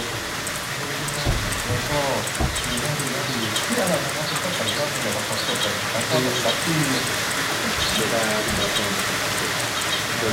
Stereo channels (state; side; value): identical; both; correlation 1.00